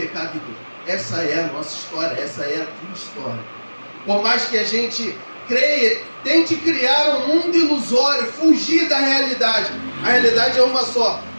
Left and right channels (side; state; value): both; inverted; correlation -1.00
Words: e dor. Essa é a nossa história, essa é a tua história. Por mais que a gente creia, tente criar um mundo ilusório, fugir da realidade. A realidade é uma só.